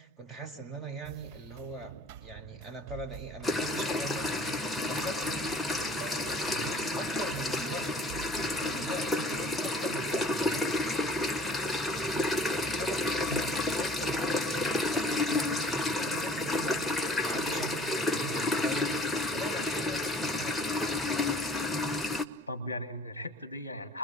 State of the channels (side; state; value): both; normal; correlation 0.51